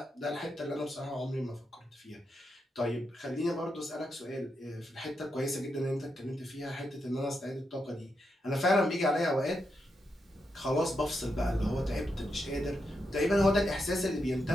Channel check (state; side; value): normal; both; correlation 0.84